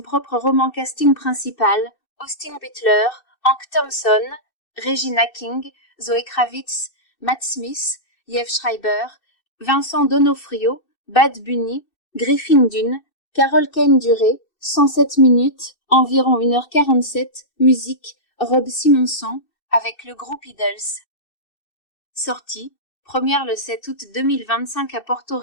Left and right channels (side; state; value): right; late; 2.6 ms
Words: roman. Casting principal, Austin Butler, Hank Thompson, Regina King, Zoe Kravitz, Matt Smith, Liev Schreiber, Vincent D'Onofrio, Bad Bunny, Griffin Dunne, Carol Kane. Durée, 107 minutes, environ 1h47, musique, Rob Simonson, avec le groupe Idols. Sortie, première le 7 août 2025 à Porto